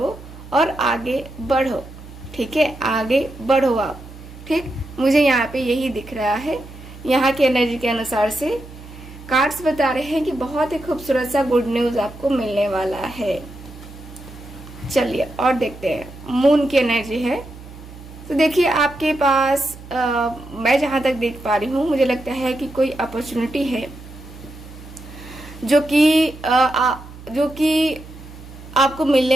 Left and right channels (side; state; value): right; noise; hum, 16 dB below the sound